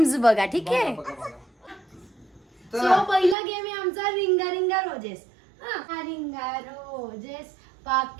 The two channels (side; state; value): left; drops out; at 3.4 s